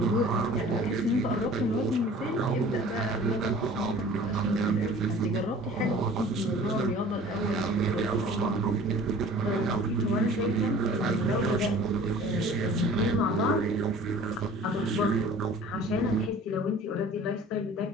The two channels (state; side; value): normal; both; correlation 0.46